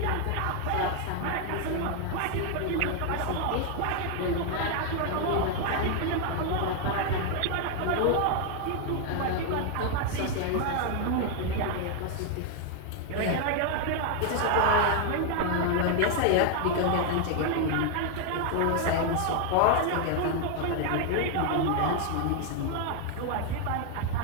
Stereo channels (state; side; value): different; both; correlation 0.00